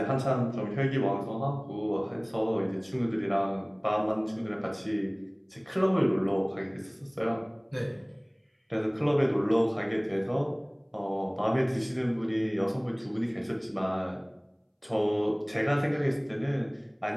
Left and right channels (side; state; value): both; identical; correlation 1.00